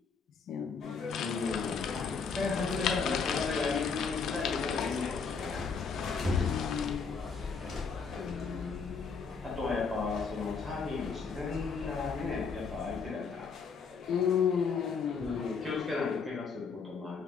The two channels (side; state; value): right; quieter; 5.3 dB